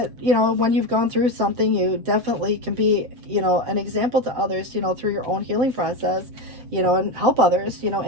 you know, when you've gone through something, you definitely can be, you know, an example to others, you know, through your own healing process, you know, and help others, you know,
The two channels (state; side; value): late; left; 7.9 ms